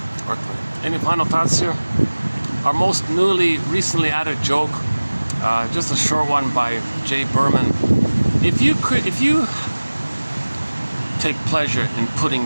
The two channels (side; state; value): both; inverted; correlation -1.00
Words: Or any final thoughts here? Our most recently added joke, just a short one by Jay Berman. If you take pleasure in putting